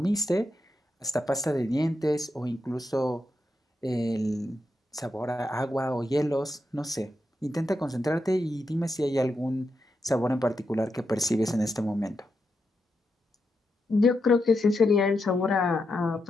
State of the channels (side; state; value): both; normal; correlation 0.85